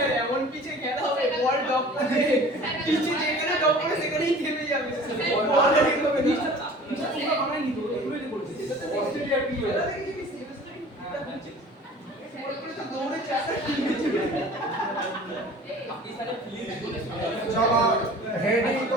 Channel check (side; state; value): both; normal; correlation 0.45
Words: এমন পিছে খেলা হবে বল ডক করে পিছে যেখানে ডক করে সেখানেই থেমে যাবে বল রেডি হবে নিচে পুরো আমরা নিতে হবে এগুলোই করছি এটা তো অস্ট্রেলিয়া কি হয় দৌড়ে চাকা আপনি সাথে প্লিজ চলো হেডিং